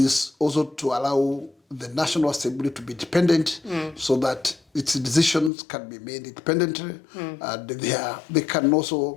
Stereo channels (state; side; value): drops out; right; at 5.5 s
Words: also to allow the National Assembly to be independent so that its decisions can be made independently, and they can